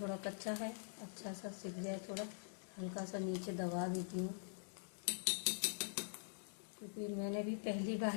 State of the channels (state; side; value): silent; right; digital silence